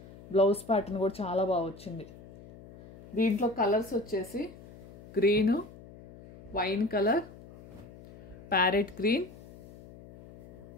బ్లౌజ్ ప్యాటర్న్ కూడా చాలా బాగా వచ్చింది. దీంట్లో కలర్స్ వచ్చేసి green, wine colour, parrot green,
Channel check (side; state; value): left; noise; hum, 19 dB below the sound